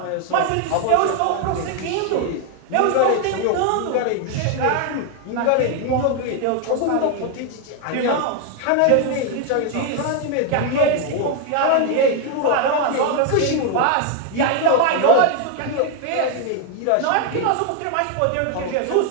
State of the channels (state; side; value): different; both; correlation 0.00